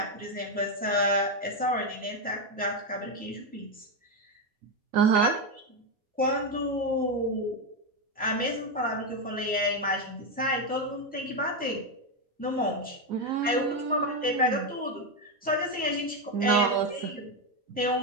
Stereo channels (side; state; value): both; normal; correlation 0.07